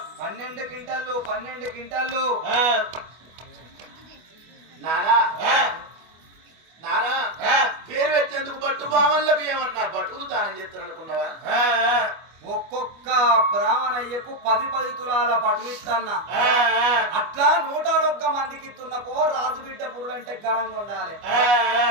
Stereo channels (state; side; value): late; left; 25 ms